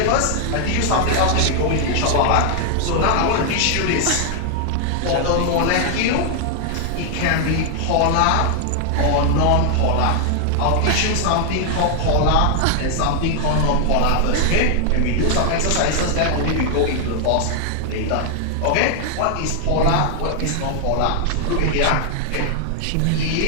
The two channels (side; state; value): both; different; correlation 0.00